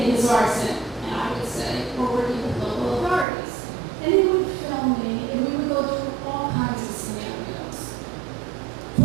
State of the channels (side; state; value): left; drops out; at 3.2 s